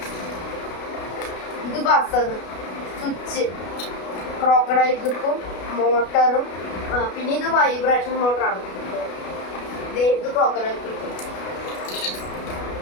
ഇത് ബസർ, സ്വിച്ച്, ക്രോക്കഡൈൽ ക്ലിപ്പും, മോട്ടറും, പിന്നെ ഇത് വൈബ്രേഷൻ മോട്ടറാണ്. ഇത് ക്രോക്കഡൈൽ ക്ലിപ്പും,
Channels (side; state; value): right; late; 33 ms